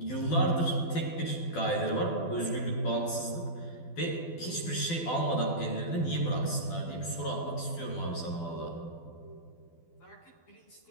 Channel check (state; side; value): late; right; 12 ms